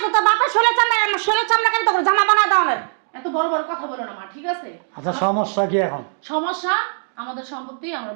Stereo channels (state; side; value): silent; left; digital silence